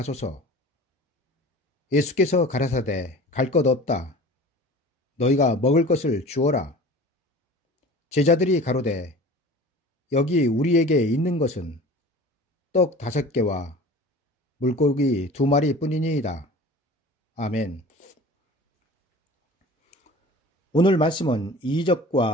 예수께서 가라사대 갈 것 없다. 너희가 먹을 것을 주어라. 제자들이 가로되 여기 우리에게 있는 것은 떡 5개와 물고기 2마리 뿐이니이다. 아멘. 오늘 말씀은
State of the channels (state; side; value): normal; both; correlation 0.41